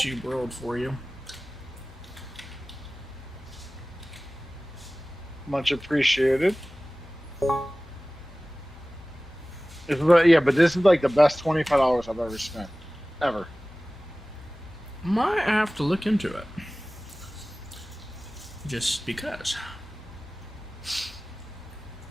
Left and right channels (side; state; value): both; normal; correlation 0.98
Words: world for you. Much appreciated. Yeah, but this is like the best $25 I've ever spent. Ever. Might have to look into it. Just because. It